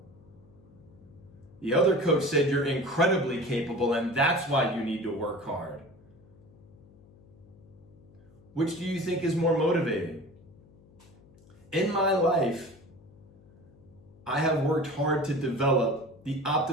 The other coach said you're incredibly capable and that's why you need to work hard. Which do you think is more motivating? In my life, I have worked hard to develop the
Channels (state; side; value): noise; left; hum, 25 dB below the sound